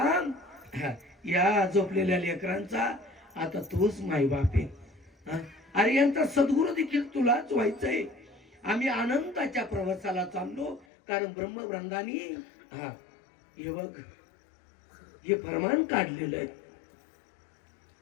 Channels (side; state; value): right; drops out; at 10.9 s